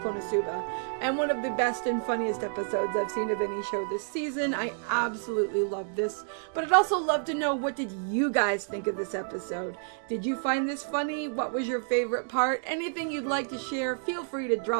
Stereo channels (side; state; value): left; silent; digital silence